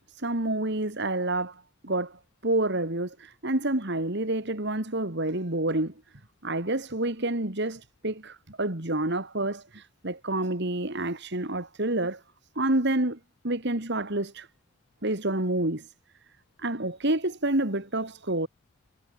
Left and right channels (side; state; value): both; normal; correlation 0.09